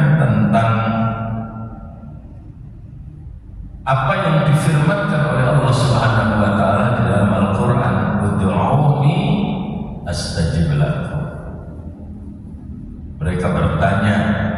tentang apa yang difirmankan oleh Allah Subhanahu wa taala di dalam Al-Qur'an, "Ud'uuni astajib lakum." Mereka bertanya,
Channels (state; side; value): identical; both; correlation 1.00